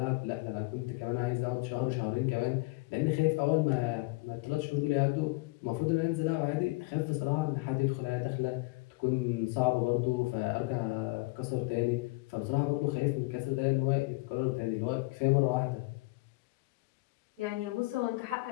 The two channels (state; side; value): quieter; right; 25.0 dB